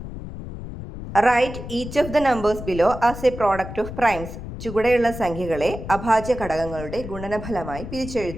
Write each of the numbers below as a product of primes. ചുവടെയുള്ള സംഖ്യകളെ അഭാജ്യ ഘടകങ്ങളുടെ ഗുണനഫലമായി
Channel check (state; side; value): noise; left; rumble, 10 dB below the sound